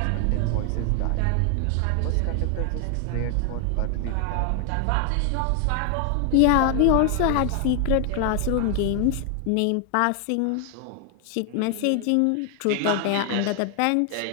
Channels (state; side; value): different; both; correlation 0.00